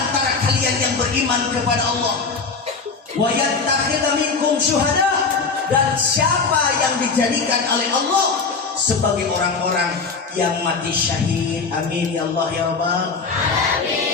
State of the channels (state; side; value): quieter; right; 4.7 dB